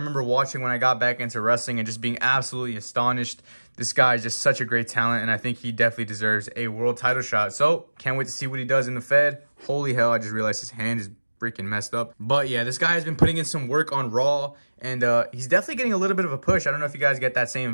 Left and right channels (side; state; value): both; inverted; correlation -1.00